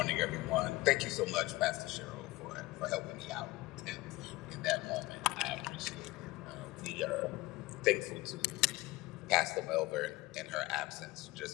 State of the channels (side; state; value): right; quieter; 20.2 dB